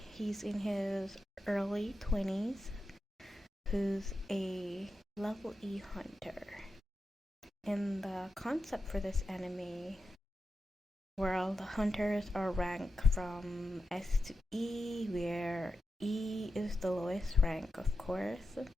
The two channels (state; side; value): normal; both; correlation 0.89